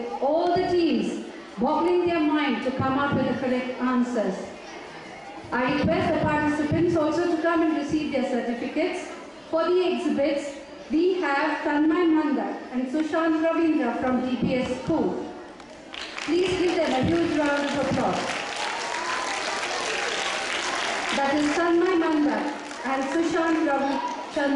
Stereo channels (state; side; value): identical; both; correlation 1.00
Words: all the teams boggling their mind to come up with the correct answers. I request the participants also to come and receive their certificates. For the exhibits, we have Tanmay Mandar and Sushant Ravindra from DPS School. Please give them a huge round of applause. That is Tanmay Mandar and Sushant